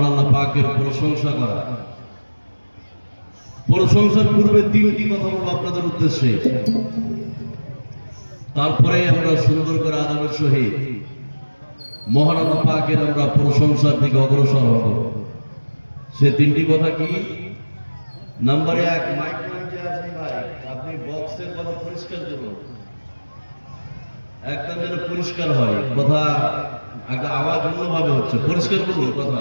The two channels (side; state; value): both; inverted; correlation -1.00